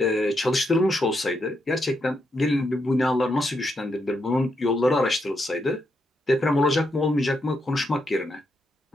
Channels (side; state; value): both; normal; correlation 0.81